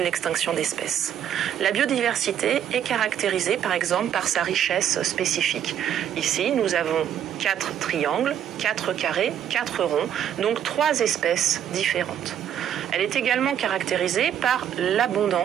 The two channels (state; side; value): quieter; left; 9.7 dB